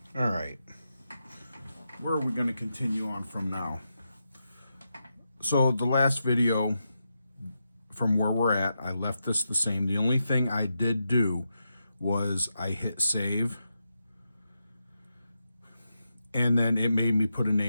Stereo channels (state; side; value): inverted; both; correlation -0.86